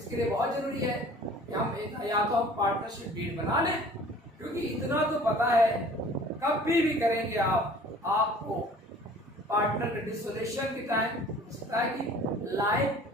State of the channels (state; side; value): normal; both; correlation 0.48